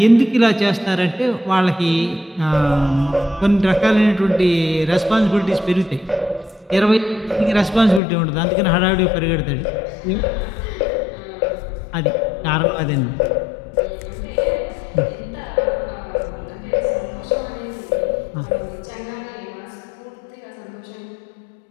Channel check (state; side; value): drops out; right; at 8.0 s